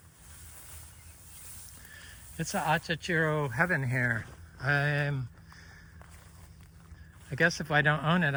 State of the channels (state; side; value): identical; both; correlation 1.00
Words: it's an Achachairu heaven here. I guess if I don't own it,